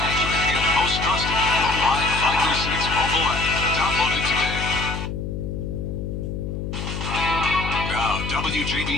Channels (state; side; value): noise; left; hum, 5 dB below the sound